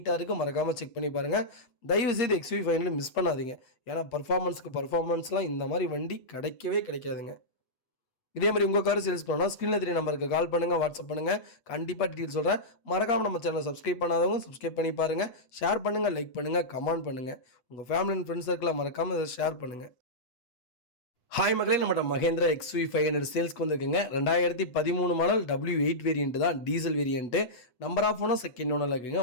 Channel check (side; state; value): right; late; 8.0 ms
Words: இருக்குது. மறக்காமல் செக் பண்ணி பாருங்கள். தயவுசெய்து XUV 500 மிஸ் பண்ணாதீங்க. ஏன்னா பர்ஃபார்மன்ஸ்லாம் இந்த மாதிரி வண்டி கிடைக்கவே கிடைக்காதுங்க. இதே மாதிரி உங்கள் கார் சேல்ஸ் பண்ணணும் ஸ்க்ரீனில் தெரிய நம்பருக்கு கால் பண்ணுங்கள், வாட்ஸ்அப் பண்ணுங்கள். கண்டிப்பாக டீட்டெயில் சொல்கிறேன். மறக்காமல் நம்ம சேனலை சப்ஸ்கிரைப் பண்ணாதவங்க சப்ஸ்கிரைப் பண்ணி பாருங்கள். ஷேர் பண்ணுங்கள், லைக் பண்ணுங்கள், கமெண்ட் பண்ணுங்கள். உங்கள் ஃபேமிலி அண்ட் ஃப்ரெண்ட்ஸ் சர்க்கிளில் மறக்காமல் இதை ஷேர் பண்ணுங்கள். ஹாய் மக்களே, நம்மகிட்ட மகேந்திரா XUV500 சேல்ஸ்க்கு வந்துருக்குங்க. 2013 மாடல் W8 வேரியன்ட் தான், diesel variant. Number of owner second ஓனரில் இருக்குங்க.